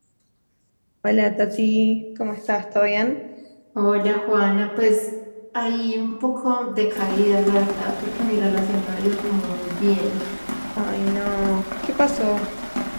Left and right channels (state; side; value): inverted; both; correlation -1.00